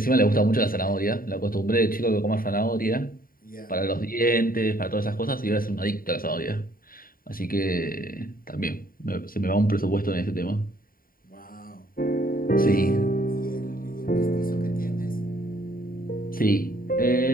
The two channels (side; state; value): right; late; 0.41 ms